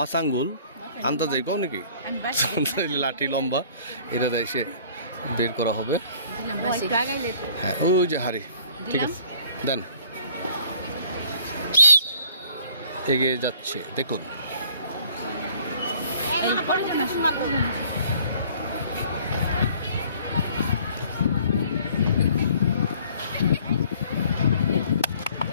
আঙ্গুল আন্দাজে কও নাকি? লাঠি লম্বা, এটা এসে বের করা হবে। হ্যাঁ, ওই যে হাড়ি, ঠিক আছে, দেন। এগিয়ে যাচ্ছে দেখুন।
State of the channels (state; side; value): inverted; both; correlation -0.54